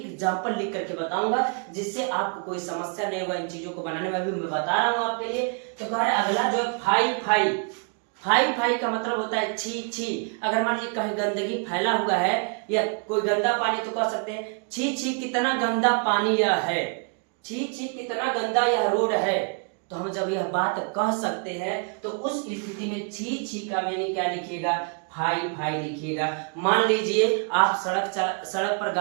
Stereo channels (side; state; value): left; quieter; 38.9 dB